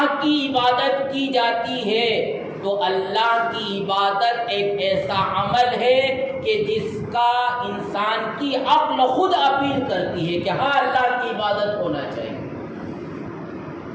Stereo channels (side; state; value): both; identical; correlation 1.00